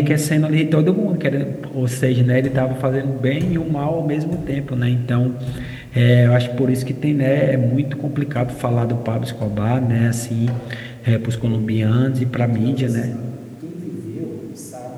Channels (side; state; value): both; identical; correlation 1.00